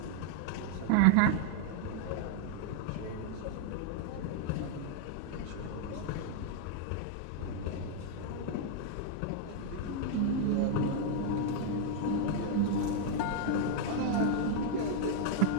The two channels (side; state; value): both; different; correlation -0.01